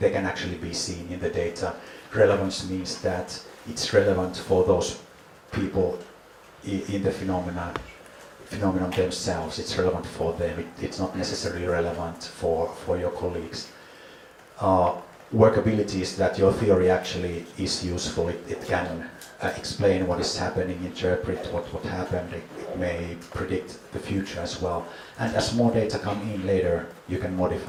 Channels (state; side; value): identical; both; correlation 1.00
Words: can actually be seen in the data. Relevance means that it's relevant for those people in the phenomenon themselves. It's relevant for them. It's not necessarily relevant for your colleagues. Workability is that your theory actually is useful. It can explain what is happening, interpret what happened. It may predict the future as well. And as more data come in later, you can